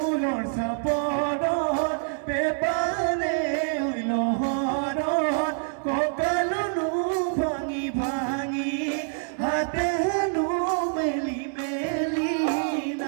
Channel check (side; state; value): left; silent; digital silence